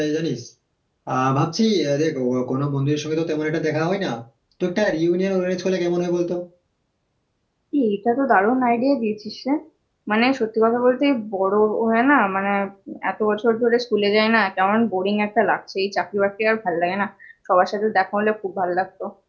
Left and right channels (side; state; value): both; identical; correlation 1.00